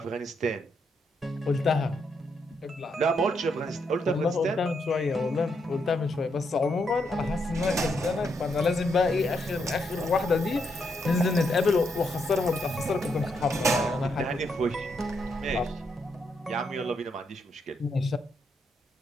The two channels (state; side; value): normal; both; correlation 0.78